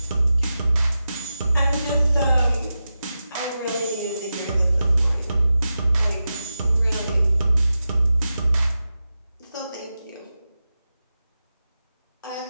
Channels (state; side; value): inverted; both; correlation -0.92